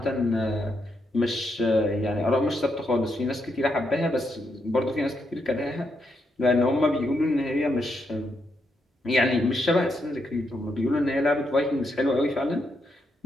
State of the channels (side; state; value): both; normal; correlation 0.80